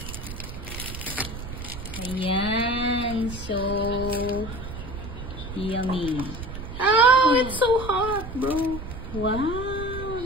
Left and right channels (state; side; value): noise; right; rumble, 9 dB below the sound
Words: Ayan. So, yummy. Oh, it's so hot, bro. Wow,